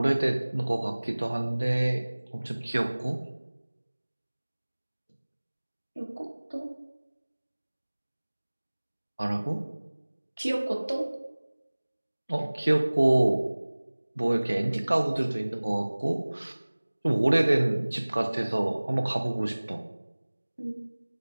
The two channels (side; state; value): both; inverted; correlation -1.00